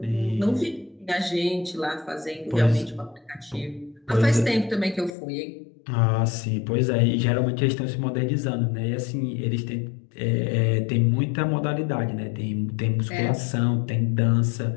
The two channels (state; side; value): drops out; right; at 5.2 s